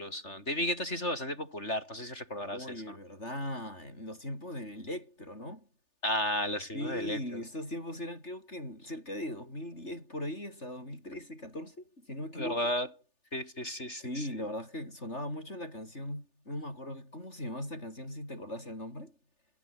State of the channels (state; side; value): late; right; 3.4 ms